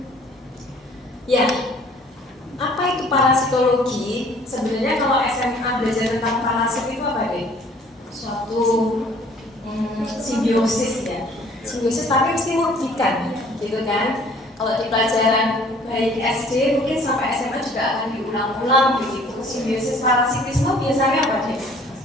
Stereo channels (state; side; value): normal; both; correlation 0.55